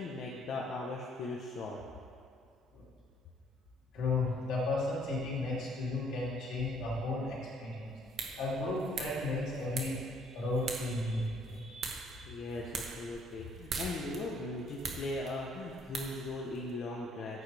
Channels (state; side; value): normal; both; correlation 0.63